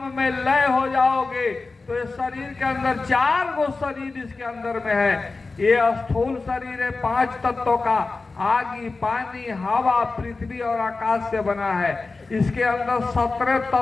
में लय हो जाओगे तो इस शरीर के अंदर 4 गो शरीर इसके अंदर में है। ये स्थूल शरीर है 5 तत्वों का, आगी, पानी, हवा, पृथ्वी और आकाश से बना है। इसके अंदर 17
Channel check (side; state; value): right; quieter; 3.8 dB